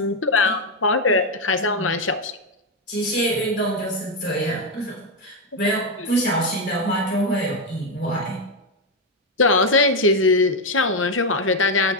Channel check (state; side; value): normal; both; correlation 0.05